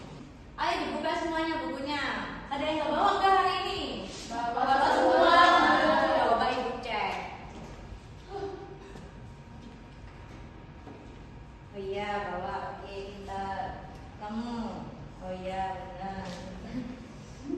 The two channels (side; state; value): both; identical; correlation 1.00